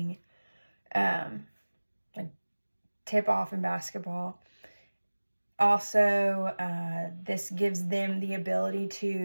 like tip off in basketball. Also, this gives them the ability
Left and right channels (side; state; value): both; inverted; correlation -1.00